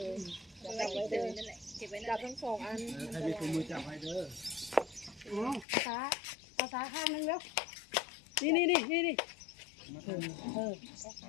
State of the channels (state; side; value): drops out; right; at 5.7 s